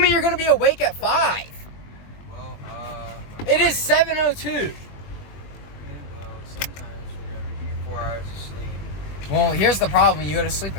you're gonna be awake at 5. Well, It is 7:02. well, sometimes whenever you get 4 hours of sleep. Well, here's the problem. You go to sleep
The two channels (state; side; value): late; right; 21 ms